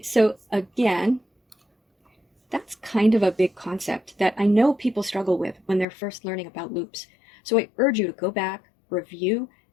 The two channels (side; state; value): right; drops out; at 5.9 s